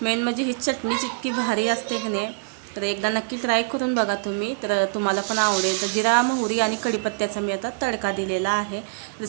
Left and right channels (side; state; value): left; quieter; 32.7 dB